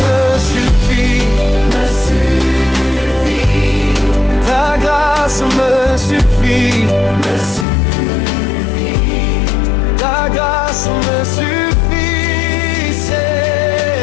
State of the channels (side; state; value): right; drops out; at 7.7 s